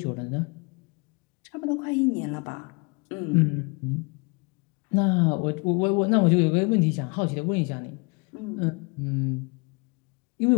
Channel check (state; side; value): quieter; right; 30.6 dB